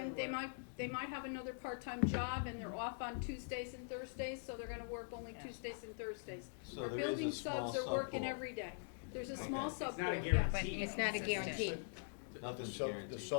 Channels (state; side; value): silent; right; digital silence